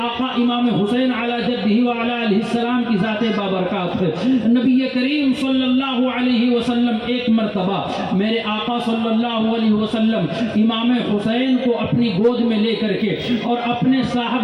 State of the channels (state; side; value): identical; both; correlation 1.00